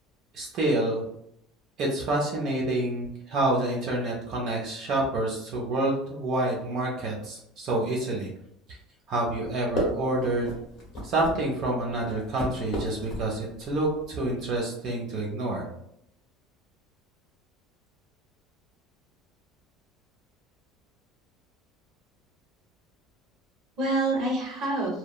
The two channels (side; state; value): both; normal; correlation 0.34